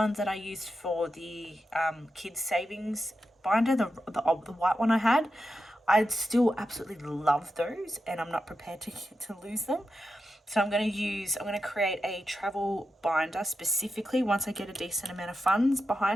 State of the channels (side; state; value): both; normal; correlation 0.89